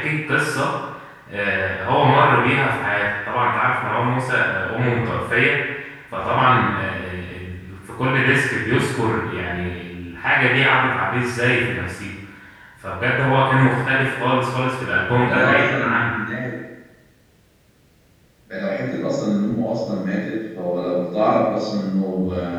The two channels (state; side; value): identical; both; correlation 1.00